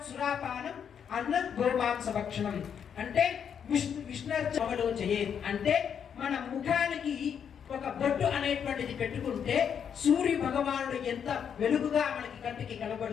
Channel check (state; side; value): quieter; right; 7.8 dB